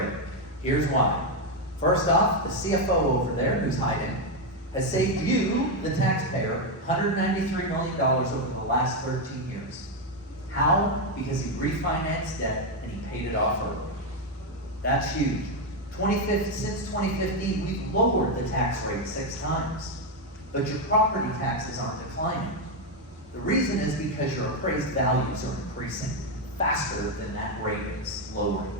Here's why. First off, the CFO over there, who's hiding, has saved you, the taxpayer, $193 million over the last 13 years. How? Because he refinanced debt and he paid it off early. That's huge. Since 2015, we've lowered the tax rate 6 times, but your property taxes aren't declining. The reason is because your appraised values are increasing faster than that rate is lowering.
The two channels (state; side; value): normal; both; correlation 0.05